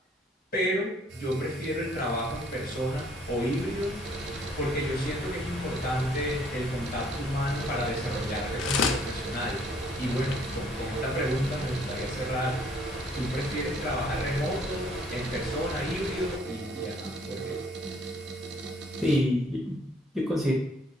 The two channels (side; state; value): both; normal; correlation 0.61